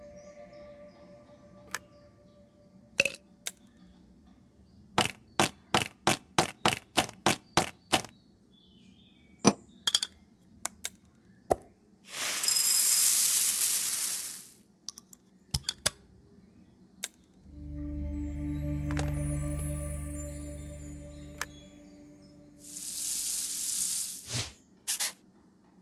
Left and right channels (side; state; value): both; identical; correlation 1.00